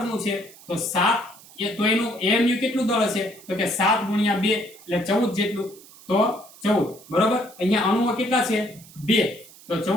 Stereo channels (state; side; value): noise; right; hiss, 22 dB below the sound